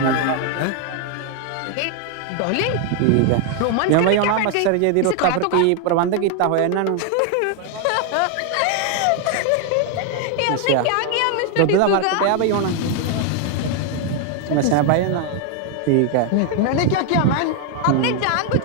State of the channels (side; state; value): both; different; correlation 0.00